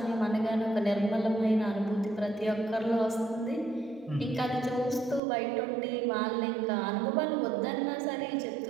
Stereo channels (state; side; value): drops out; left; at 5.2 s